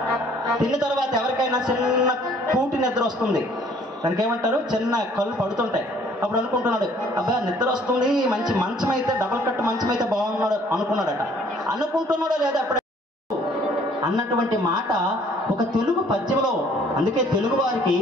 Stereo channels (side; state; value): both; normal; correlation 0.59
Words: తిన్న తర్వాత ఎవరికైనా చిన్న కూటి నిద్ర వస్తుంది, దానికి ఏమంటారు, చిన్న కళ్ళు పడుతుంటాయి. అప్పుడు అనుకుంటున్నాడు, అబ్బా నిద్ర వస్తుంది, మంచి మంచం అయితే, డబల్ కట్ మంచం అయితే బాగున్నాడు అనుకున్నాడట. అనుకుంటున్నాడో లేదా అప్పుడే అన్నటువంటి మాట ఒక తెలుగు పద్యంలో. అందుకే తెలుగు వారికి